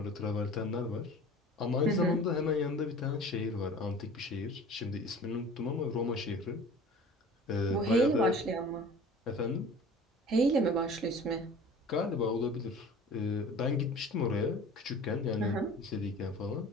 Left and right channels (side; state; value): both; normal; correlation 0.43